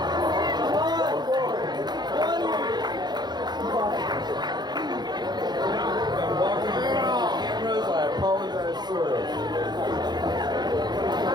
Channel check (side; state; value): left; late; 0.21 ms